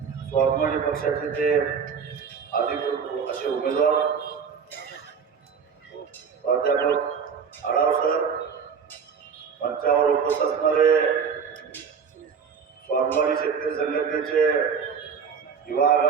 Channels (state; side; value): quieter; left; 6.4 dB